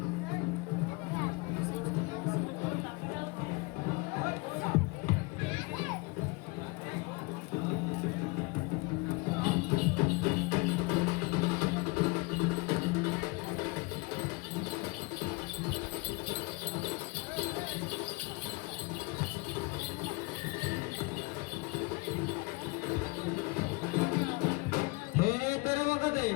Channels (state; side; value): quieter; right; 26.8 dB